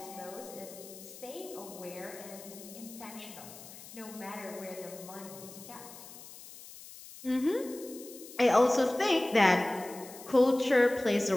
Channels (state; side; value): noise; left; hiss, 16 dB below the sound